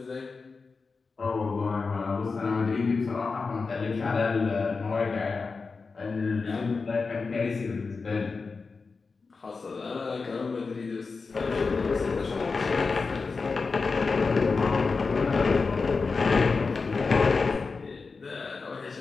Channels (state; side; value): quieter; right; 4.5 dB